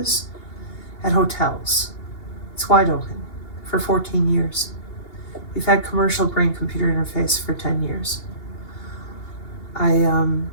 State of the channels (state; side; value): late; right; 2.8 ms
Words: at hotels. It's wide open for 14 years. We've had commercial brain-computer interface for 10 years.